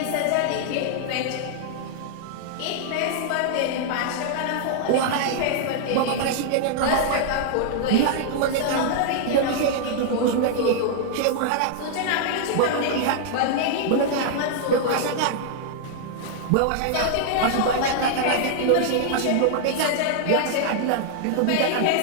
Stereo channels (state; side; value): different; both; correlation -0.01